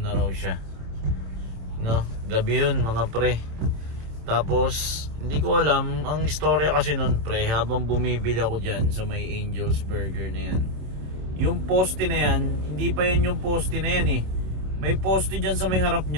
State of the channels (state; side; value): late; left; 27 ms